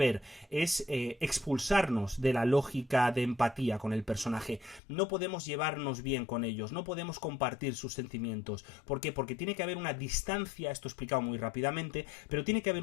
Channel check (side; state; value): right; drops out; at 4.8 s